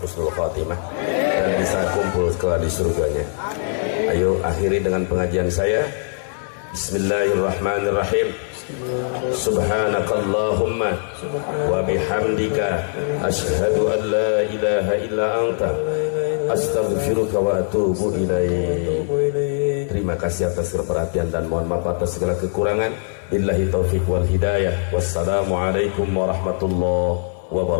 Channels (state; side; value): silent; right; 61 dB below the other